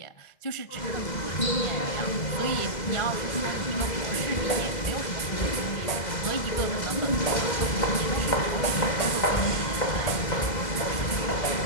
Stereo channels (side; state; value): right; late; 2.0 ms